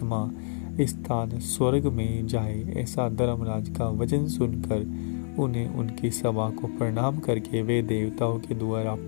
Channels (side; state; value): right; silent; 57 dB below the other